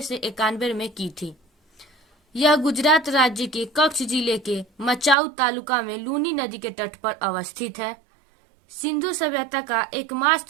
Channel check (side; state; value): left; drops out; at 5.2 s